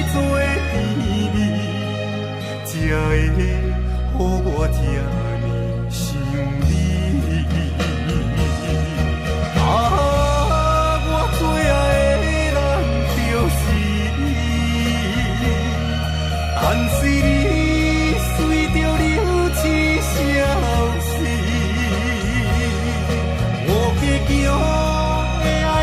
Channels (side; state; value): both; identical; correlation 1.00